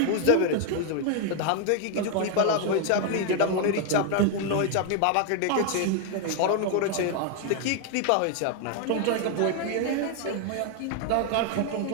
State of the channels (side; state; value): both; different; correlation 0.00